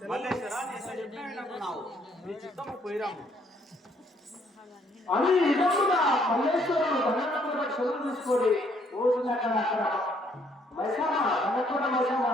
మల్లేశ్వర, నీ ఎంత చెప్పినా వినకున్నావు, నీ చిత్తము పోయిరాము. అని నిజంగా మల్లేశ్వరుడు దండనప్పుడు చదువు తీసుకొని రోజులక్కడ అక్కడ మైసమ్మ దండకూడ మైసమ్మ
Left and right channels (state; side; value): normal; both; correlation 0.67